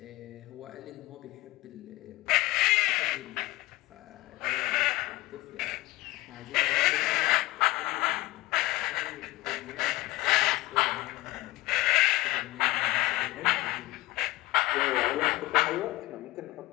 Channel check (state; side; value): quieter; right; 19.3 dB